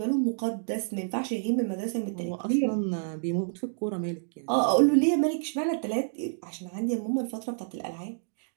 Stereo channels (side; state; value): left; silent; digital silence